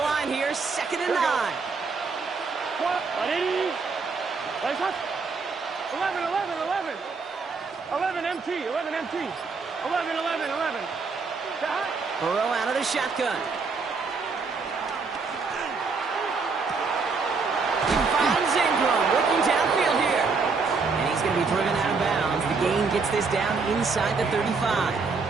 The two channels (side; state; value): left; quieter; 4.6 dB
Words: here, 2nd and 9. Place us. 11, 11, 11. 11 MT, 11 MT. 11, 11, 11. Burrow out of the shotgun. He finds Ingram working downfield here. And he's going to be driven out of bounds. The gain gets this down inside the